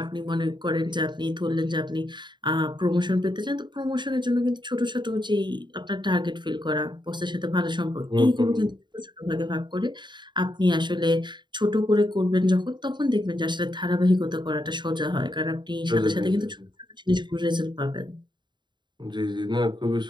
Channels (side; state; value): left; late; 0.22 ms